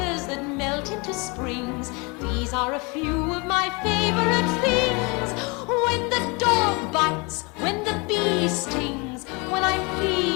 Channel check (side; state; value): right; quieter; 28.9 dB